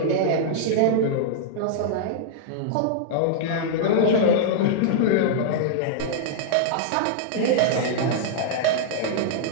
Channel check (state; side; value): different; both; correlation -0.01